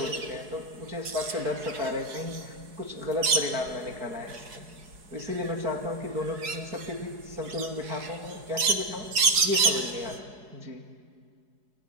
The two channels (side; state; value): left; late; 4.7 ms